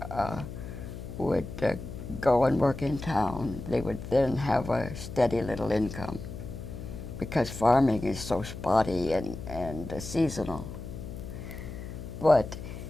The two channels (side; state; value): left; noise; hum, 10 dB below the sound